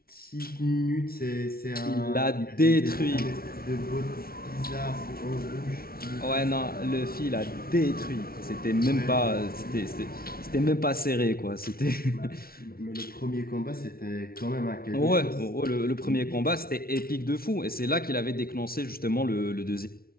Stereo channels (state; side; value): late; right; 0.44 ms